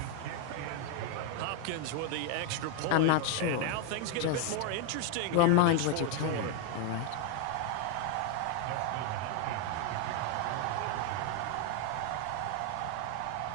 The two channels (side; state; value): both; different; correlation 0.01